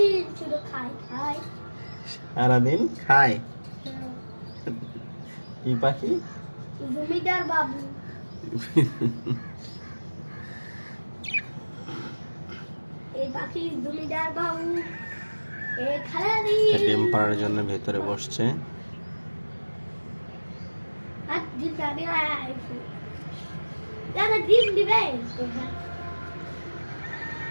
সারাদিন খায় কি পাখি? জমিদার বাবু। এই পাখি জমিদার বাবু ডিম পাড়ার জন্য ভেতরে বসছে। ডিম দিবে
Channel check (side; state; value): both; inverted; correlation -1.00